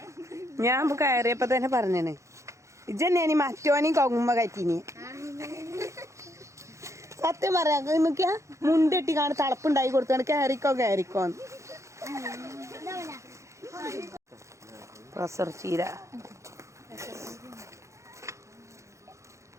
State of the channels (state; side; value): late; left; 0.14 ms